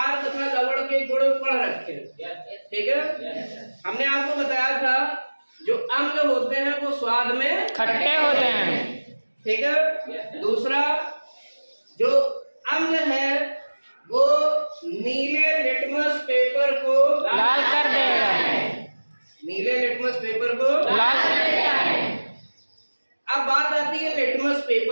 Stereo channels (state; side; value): inverted; both; correlation -1.00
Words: तथा लवण के गुण पढ़ रखे, ठीक है। हमने आपको बताया था जो अम्ल होते हैं वो स्वाद में खट्टे होते हैं, ठीक है। दूसरा, जो अम्ल है वो नीले लिटमस पेपर को लाल कर देगा। नीले लिटमस पेपर को लाल कर देगा। अब बात आती है लिटमस